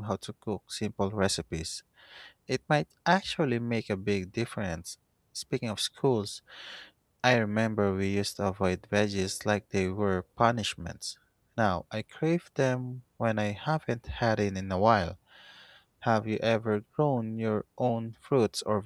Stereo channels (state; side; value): identical; both; correlation 1.00